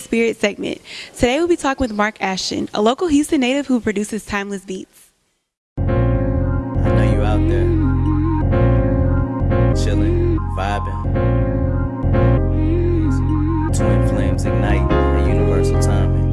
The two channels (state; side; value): identical; both; correlation 1.00